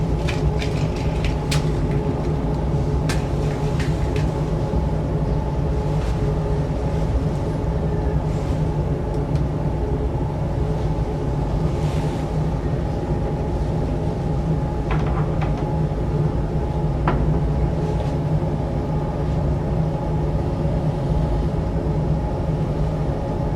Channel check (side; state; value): both; identical; correlation 1.00